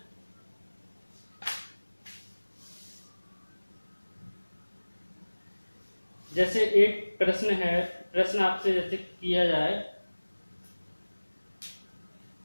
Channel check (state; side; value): inverted; both; correlation -1.00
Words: जैसे एक प्रश्न है, प्रश्न आपसे जैसे किया जाए,